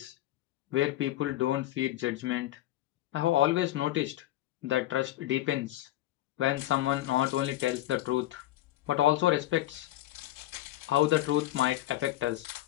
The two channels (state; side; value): quieter; right; 14.9 dB